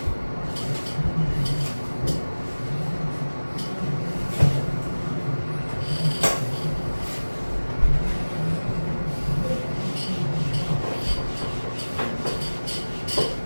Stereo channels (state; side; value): inverted; both; correlation -1.00